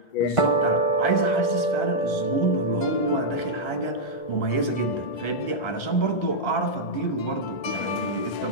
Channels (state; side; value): late; right; 1.3 ms